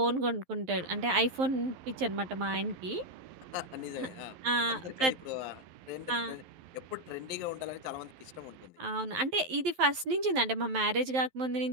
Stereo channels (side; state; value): left; late; 11 ms